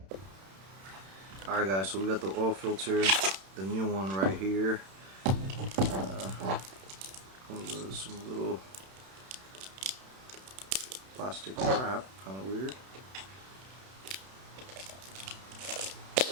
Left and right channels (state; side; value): late; left; 31 ms